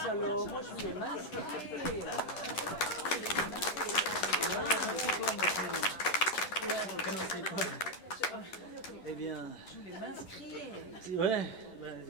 alors, moi je voulais m'inscrire. Eh bien... Je voulais m'inscrire. Ouais.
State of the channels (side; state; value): right; late; 11 ms